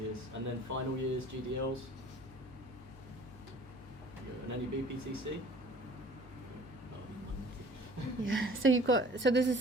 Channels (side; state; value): both; normal; correlation 0.49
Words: and then final years, GDLs, and any BPTC. Yeah, so there's a